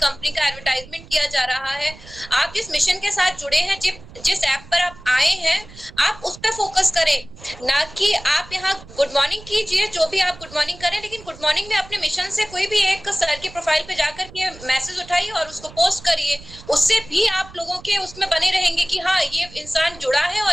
का एडवर्टाइजमेंट किया जा रहा है। आप जिस मिशन के साथ जुड़े हैं, जिस ऐप पर आप आए हैं, आप उस पर फोकस करें, ना कि आप यहाँ गुड मॉर्निंग कीजिए। जो भी आप गुड मॉर्निंग करें, लेकिन गुड मॉर्निंग में अपने मिशन से कोई भी एक सर की प्रोफाइल पे जाकर के मैसेज उठाइए और उसको पोस्ट करिए। उससे भी आप लोगों के उसमें बने रहेंगे कि हाँ, ये इंसान जुड़ा है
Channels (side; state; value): right; noise; rumble, 19 dB below the sound